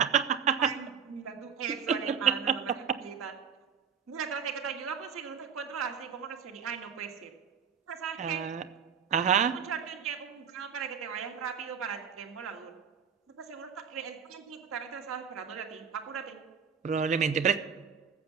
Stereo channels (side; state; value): left; quieter; 7.1 dB